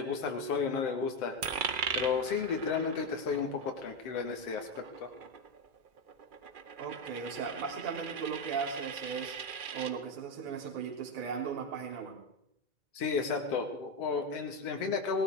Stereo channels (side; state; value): left; late; 2.4 ms